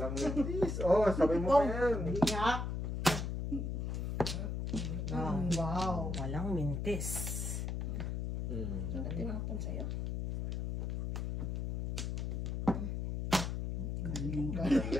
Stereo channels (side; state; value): left; noise; hum, 2 dB below the sound